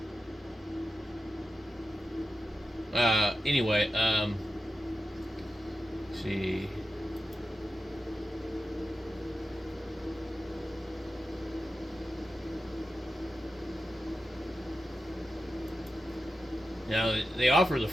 Anyway, let's see. Now, they offer the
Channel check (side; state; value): both; normal; correlation 0.91